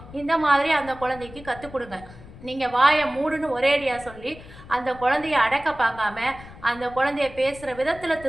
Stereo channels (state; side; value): noise; left; rumble, 18 dB below the sound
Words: இந்த மாதிரி அந்த குழந்தைக்கு கற்றுக் கொடுங்க. நீங்கள் வாயை மூடுன்னு ஒரேடியாக சொல்லி அந்த குழந்தைய அடக்க பார்க்காம அந்த குழந்தைய பேசுகிற விதத்தில்